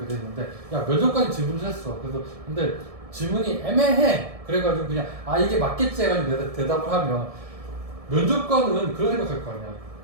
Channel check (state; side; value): late; left; 1.7 ms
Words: 돼 있는데, 야, 면접관이 질문을 했어. 그래서 근데 질문이 애매해. 그래가지고 그냥 이게 맞겠지 해가지고 대답을 하면 면접관은 그런 생각할 거 아니야.